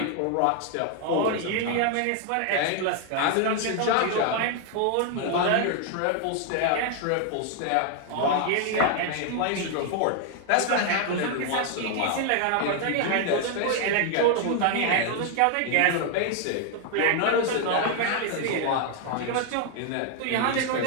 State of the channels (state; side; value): different; both; correlation 0.00